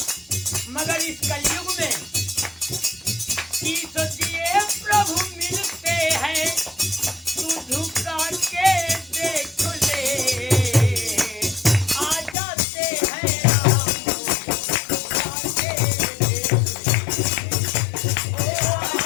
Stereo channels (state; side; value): drops out; right; at 12.4 s